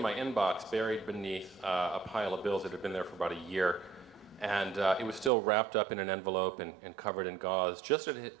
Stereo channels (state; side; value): drops out; left; at 5.3 s